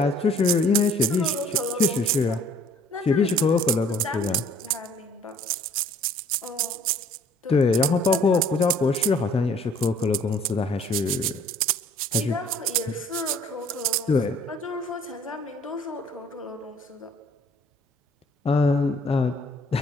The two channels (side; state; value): both; normal; correlation 0.56